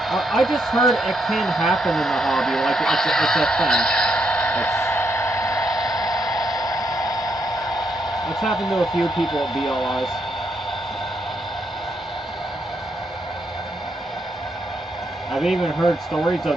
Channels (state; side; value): normal; both; correlation 0.77